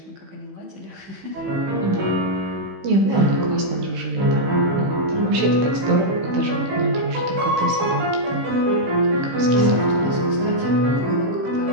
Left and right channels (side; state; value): left; late; 16 ms